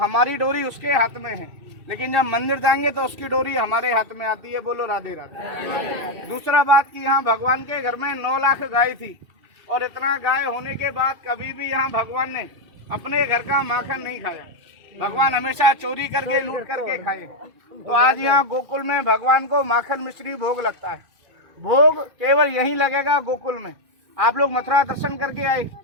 डोरी उसके हाथ में है, लेकिन जब मंदिर जाएंगे तो उसकी डोरी हमारे हाथ में आती है। बोलो राधे राधे। दूसरा बात कि यहाँ भगवान के घर में 9 लाख गाय थी, और इतना गाय होने के बाद कभी भी यहाँ भगवान ने अपने घर का माखन नहीं खाया। भगवान हमेशा चोरी करके लूट करके खाए। तो आज यहाँ गोकुल में भगवान को माखन मिश्री भोग लगता है। भोग केवल यहीं लगेगा गोकुल में। आप लोग मथुरा दर्शन करके आए,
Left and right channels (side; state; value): left; late; 2.2 ms